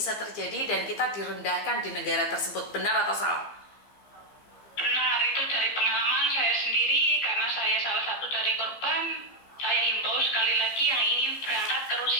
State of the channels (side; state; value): right; late; 15 ms